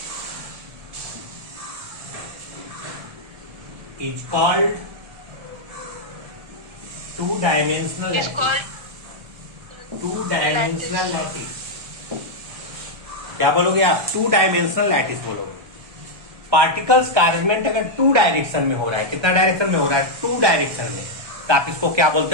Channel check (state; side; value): late; left; 1.3 ms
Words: is called two dimensional Is lattice। called two dimensional lattice. क्या बोलोगे आप? टू डायमेंशनल लैटिस बोलोगे। Particles का अरेंजमेंट अगर to direction में हो रहा है, कितना डायरेक्शन में हो रहा है? टू डायरेक्शन में, तो आप इसको क्या